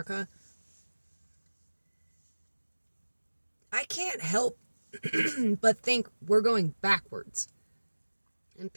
I can't help but think we're going backwards. And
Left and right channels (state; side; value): inverted; both; correlation -1.00